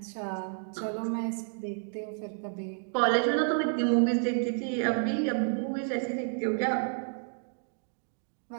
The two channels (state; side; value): silent; left; digital silence